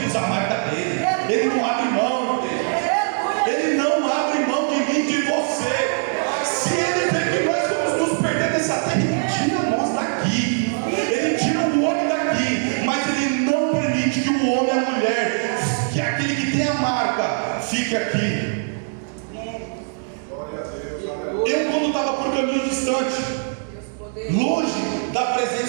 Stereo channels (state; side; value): silent; left; 57 dB below the other